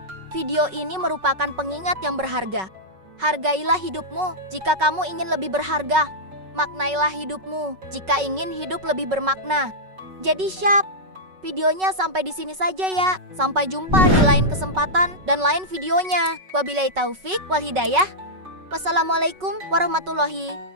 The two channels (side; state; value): left; late; 5.3 ms